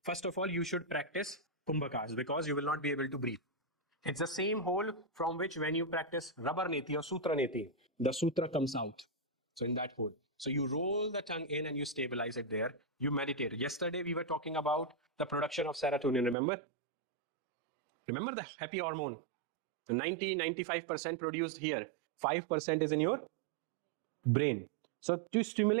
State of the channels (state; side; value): drops out; left; at 16.4 s